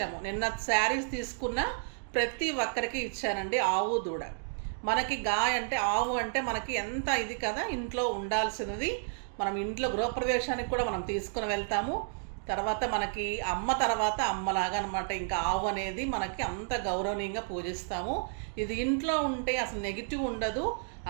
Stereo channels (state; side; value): silent; left; digital silence